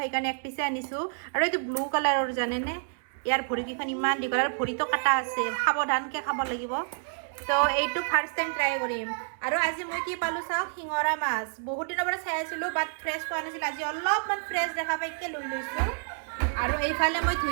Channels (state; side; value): silent; left; 59 dB below the other